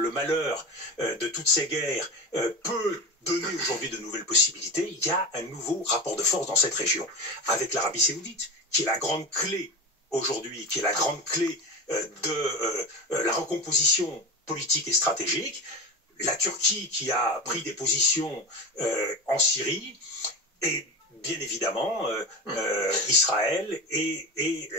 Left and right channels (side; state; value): both; normal; correlation 0.25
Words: malheur de toutes ces guerres peut donner aujourd'hui de nouvelles possibilités, il y a un nouveau rapport de force dans cette région, avec l'Arabie saoudite, qui est la grande clé aujourd'hui, qui est la grande clé de la recomposition politique et stratégique, la Turquie qui a pris des positions en Syrie, et bien évidemment Israël et